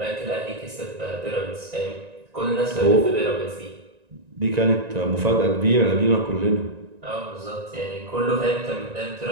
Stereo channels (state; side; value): late; left; 1.9 ms